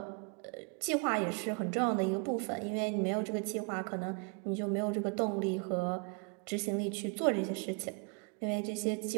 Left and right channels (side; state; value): left; quieter; 36.1 dB